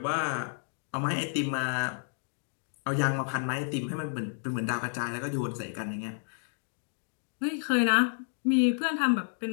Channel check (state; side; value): silent; right; digital silence